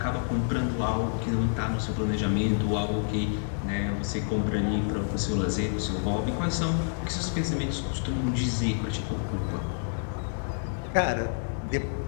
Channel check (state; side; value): silent; right; digital silence